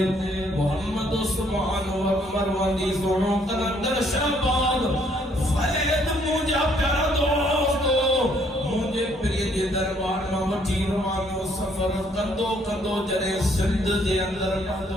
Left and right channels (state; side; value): normal; both; correlation 0.66